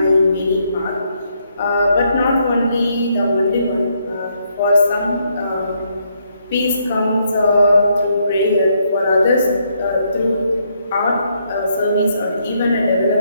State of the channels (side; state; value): both; inverted; correlation -0.74